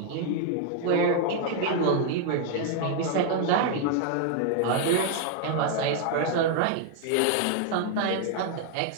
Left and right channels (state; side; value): different; both; correlation 0.00